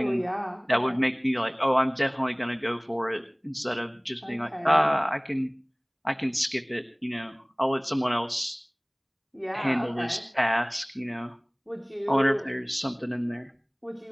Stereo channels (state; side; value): identical; both; correlation 1.00